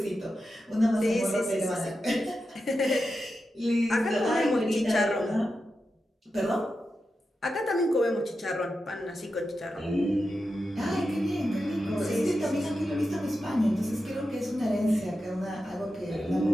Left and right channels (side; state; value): both; normal; correlation 0.90